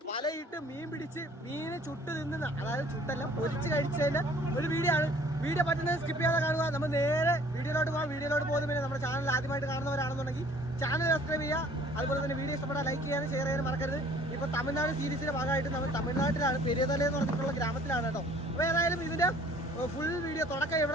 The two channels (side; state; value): both; normal; correlation 0.54